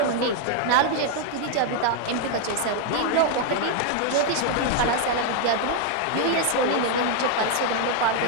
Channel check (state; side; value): different; both; correlation 0.00